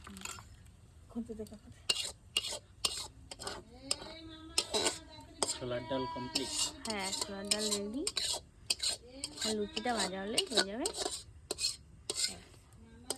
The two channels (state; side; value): identical; both; correlation 1.00